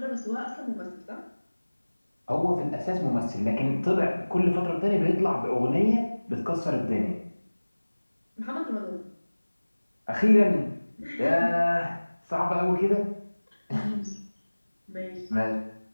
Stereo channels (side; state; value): both; inverted; correlation -1.00